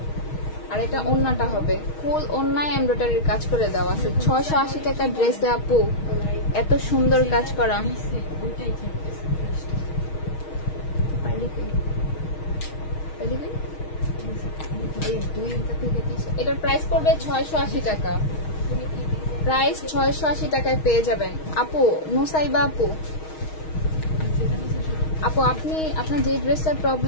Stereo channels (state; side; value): late; right; 6.4 ms